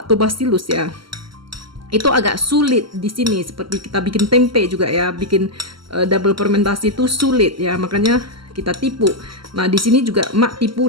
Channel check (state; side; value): late; left; 0.74 ms